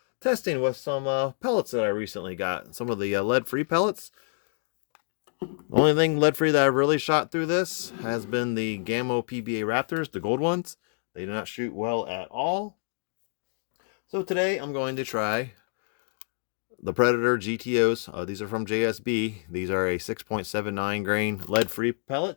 testing with some pellets that I recently got. Some of the lead-free pellets. The only thing lead-free that I've really shot through this has been the Gammo PBA Raptors, the gold ones. They do not shoot well at all. So today I'm going to try the Predator GTOs. These are from JSB. These are a 6.79 grain lead-free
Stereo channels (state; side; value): silent; right; 60 dB below the other